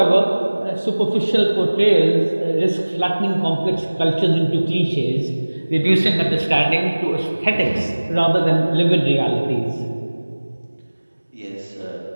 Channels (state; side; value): inverted; both; correlation -1.00